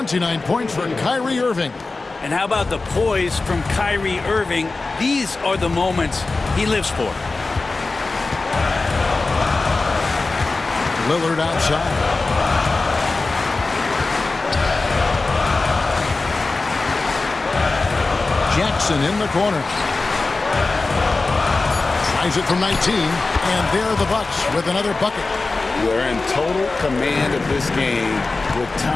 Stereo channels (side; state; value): right; quieter; 3.6 dB